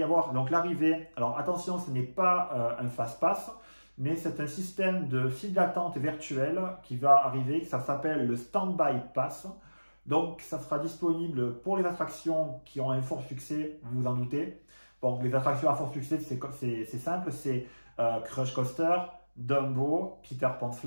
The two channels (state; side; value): inverted; both; correlation -1.00